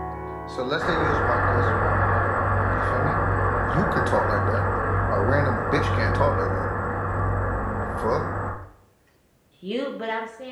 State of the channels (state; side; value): identical; both; correlation 1.00